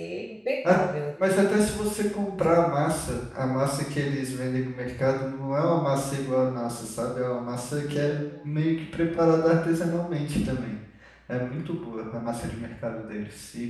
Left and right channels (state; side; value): identical; both; correlation 1.00